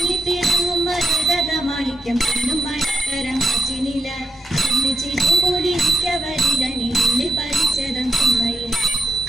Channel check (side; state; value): both; normal; correlation 0.86